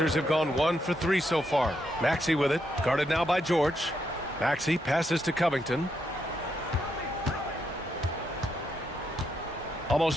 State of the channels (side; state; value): both; normal; correlation 0.80